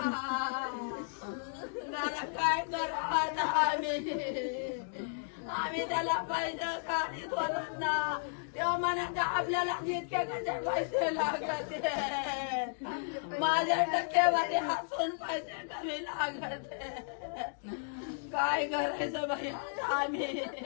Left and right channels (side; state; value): right; silent; digital silence